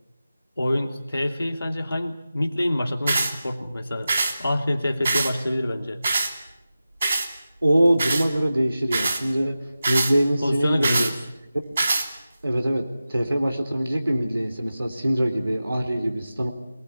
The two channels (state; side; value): inverted; both; correlation -0.94